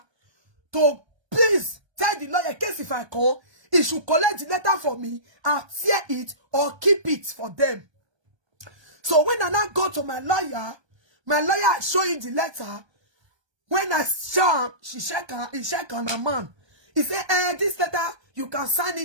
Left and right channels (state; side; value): late; left; 1.3 ms